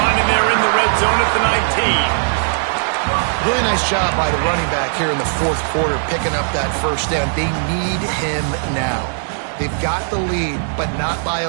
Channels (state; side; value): silent; left; digital silence